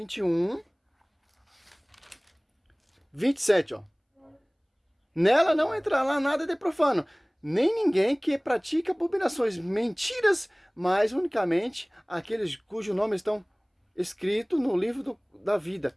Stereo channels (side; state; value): both; identical; correlation 1.00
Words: 21, 27, ó. Nela não entrará nada de profano, nem ninguém que pratica abominações, mentiras, mas unicamente aqueles cujos nomes estão escritos no livro da